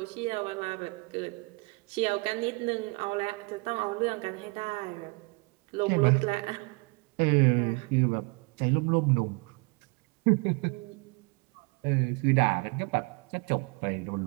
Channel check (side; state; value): left; quieter; 29.5 dB